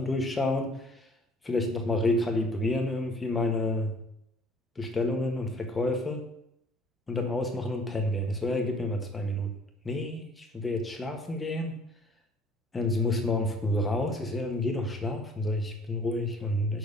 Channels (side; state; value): both; normal; correlation 0.54